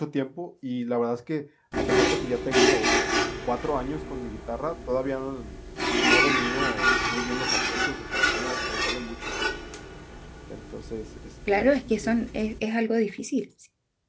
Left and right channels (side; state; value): both; identical; correlation 1.00